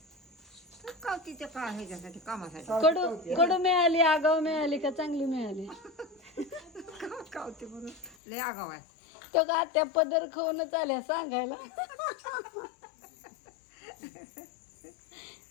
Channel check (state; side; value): drops out; right; at 8.2 s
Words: कावतीच्या का ह्याच्यासाठी कामासाठी कडू कडू मिळाली आगाव मिळाली का चांगली मिळाली कावती म्हणून लय आगाव आहे. तो का त्या पदर खाऊनच आल्या सांगायला